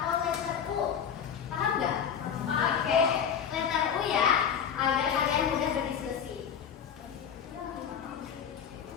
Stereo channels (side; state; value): right; quieter; 7.9 dB